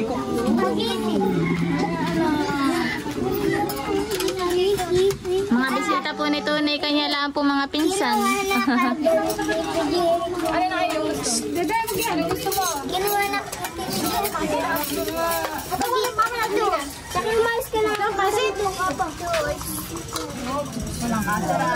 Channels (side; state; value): both; identical; correlation 1.00